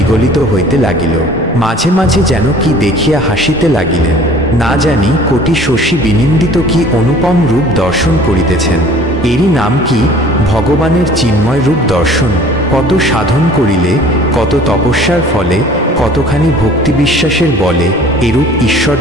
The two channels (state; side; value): normal; both; correlation 0.50